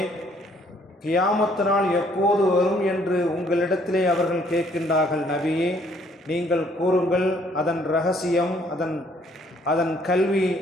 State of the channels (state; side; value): normal; both; correlation 0.64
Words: கியாமத் நாள் எப்போது வரும் என்று உங்களிடத்திலே அவர்கள் கேட்கின்றார்கள். நபியே, நீங்கள் கூறுங்கள், அதன் ரகசியம், அதன் கல்வி,